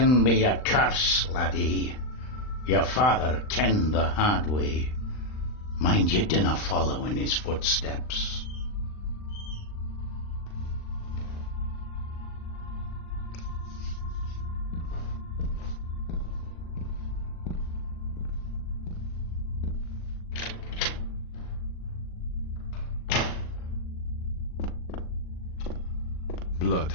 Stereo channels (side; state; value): right; late; 39 ms